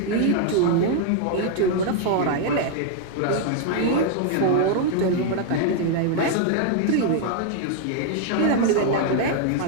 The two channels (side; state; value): both; different; correlation 0.00